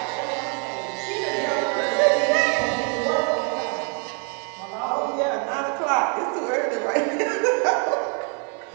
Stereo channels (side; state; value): left; quieter; 37.5 dB